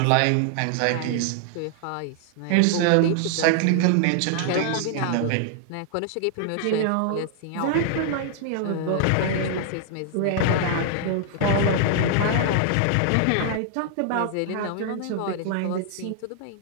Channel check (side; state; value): both; different; correlation 0.00